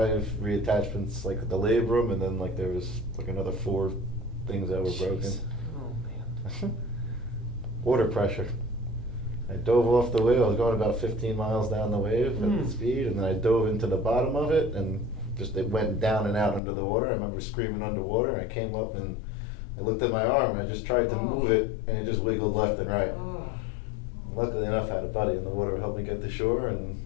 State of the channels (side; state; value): right; drops out; at 16.6 s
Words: reattachments, like the labrum, and then like there was like another 4 things that were broken. Jeez. Oh man. Water pressure. I dove off the wave. I was going about 15 miles down the wave at the speed, and then I dove into the bottom of it, and just it went down and out under the water. I remember screaming underwater, and I came up and I looked at my arm, and I just tried to move it, and it just wiggled left and right. Oh. Luckily enough, I had a buddy in the water who helped me get to shore, and